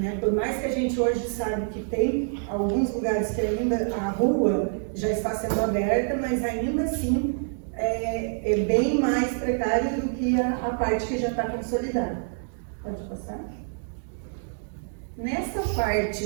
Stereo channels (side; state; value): left; silent; digital silence